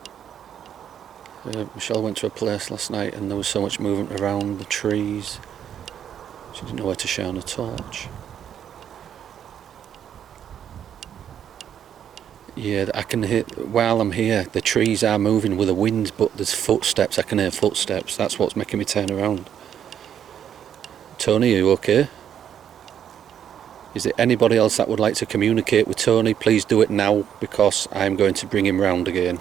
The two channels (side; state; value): left; quieter; 9.3 dB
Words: Michelle went to a place last night and there was so much movement around the trees. She didn't know where to shine a torch. Yeah, I can hear, while I'm here, the trees are moving with the wind, but there's footsteps. I can hear footsteps. That's what's making me turn around. Tony, are you okay? Is there anybody else that would like to communicate with Tony? Please do it now, because I'm going to bring him round again.